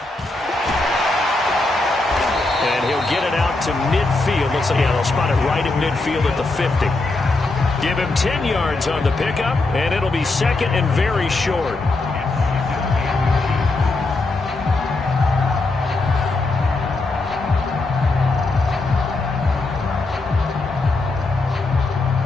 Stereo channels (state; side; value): quieter; right; 3.2 dB